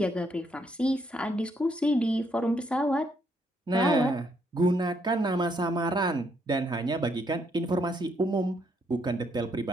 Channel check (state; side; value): normal; both; correlation 0.73